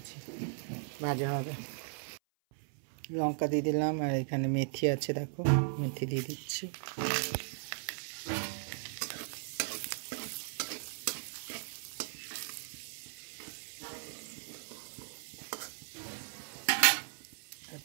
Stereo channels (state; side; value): silent; left; 53 dB below the other